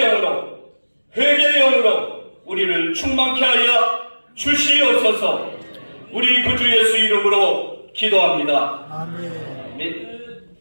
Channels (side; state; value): both; inverted; correlation -1.00